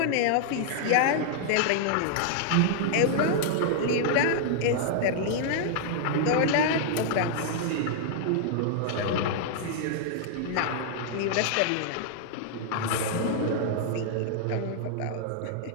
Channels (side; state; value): both; different; correlation -0.01